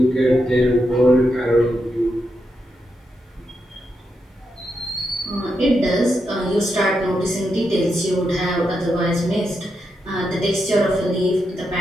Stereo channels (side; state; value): both; normal; correlation 0.84